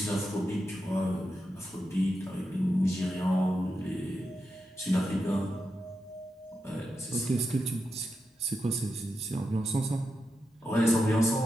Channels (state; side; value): normal; both; correlation 0.87